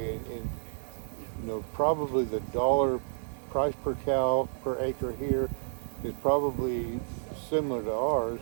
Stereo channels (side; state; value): left; silent; digital silence